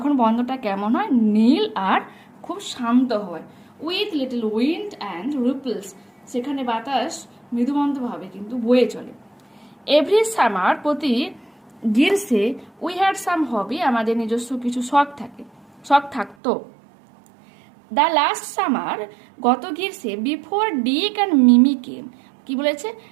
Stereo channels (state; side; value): drops out; left; at 16.4 s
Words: বন্দরটা কেমন হয়? নীল আর খুব শান্ত হয়। With little wind and ripples, সেখানে বাতাস মৃদুমন্দভাবে কিন্তু বয়ে চলে। এভরি সামার, প্রতি গ্রীষ্মে, উই হ্যাড সাম হবি, আমাদের নিজস্ব কিছু শখ থাকতো। দ্য লাস্ট সামার, গত গ্রীষ্মে, বিফোর ডিক অ্যান্ড মিমি কেম, কি বলেছে?